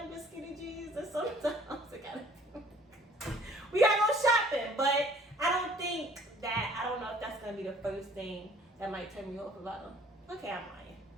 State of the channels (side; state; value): both; normal; correlation 0.55